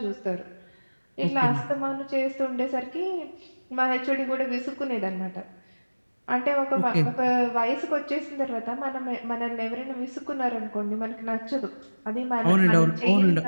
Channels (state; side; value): inverted; both; correlation -1.00